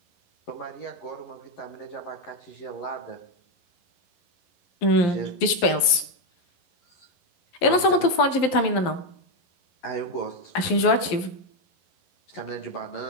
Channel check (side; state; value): right; late; 11 ms